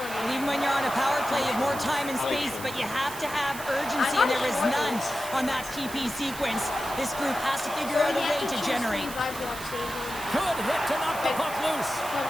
And even when you're on a power play, you have more time and space, but you have to have urgency, and there is none on that TP sequence. This group has to figure out a way to generate. Good hit to knock the puck loose.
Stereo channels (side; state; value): right; noise; hiss, 12 dB below the sound